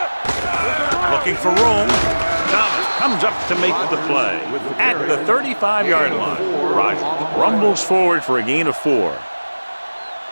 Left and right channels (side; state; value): both; inverted; correlation -1.00